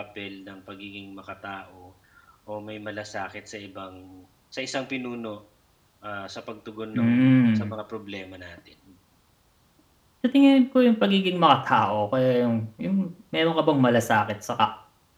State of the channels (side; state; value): both; identical; correlation 1.00